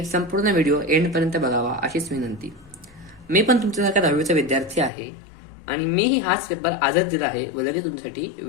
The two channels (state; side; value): drops out; right; at 4.9 s